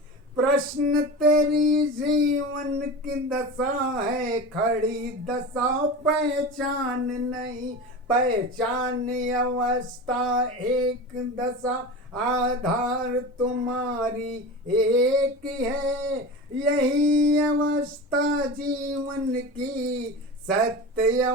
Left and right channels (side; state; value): both; normal; correlation 0.29